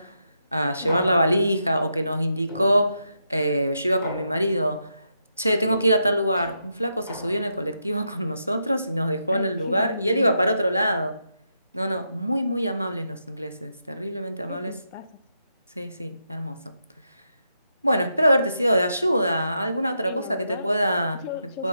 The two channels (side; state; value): both; inverted; correlation -0.82